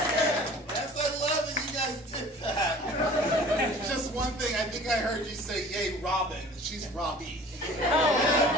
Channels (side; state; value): both; normal; correlation 0.46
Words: I love that you guys did that. Just one thing, I think I heard you say, yay, Robin. She's Robbie.